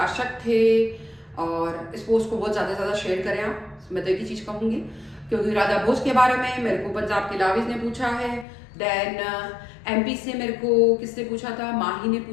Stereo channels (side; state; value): right; drops out; at 8.5 s